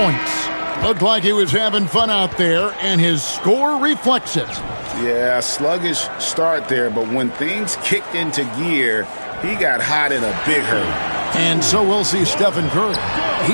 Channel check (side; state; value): both; inverted; correlation -1.00